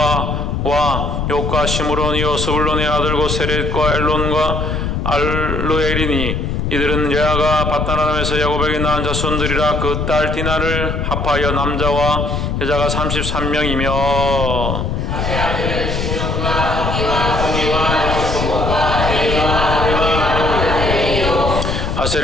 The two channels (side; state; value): left; noise; rumble, 1 dB below the sound